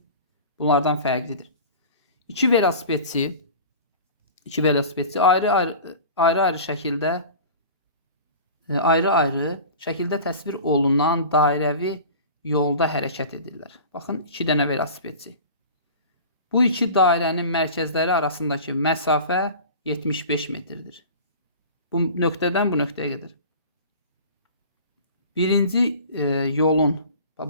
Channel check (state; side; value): inverted; both; correlation -0.38